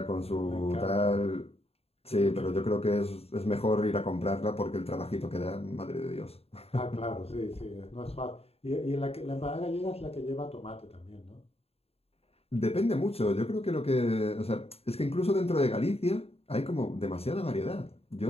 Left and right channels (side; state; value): right; late; 0.29 ms